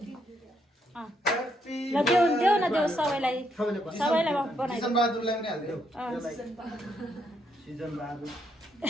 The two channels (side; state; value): both; normal; correlation 0.75